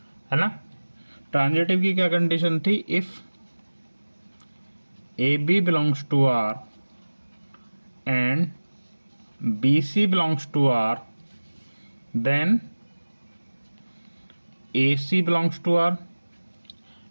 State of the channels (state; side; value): inverted; both; correlation -1.00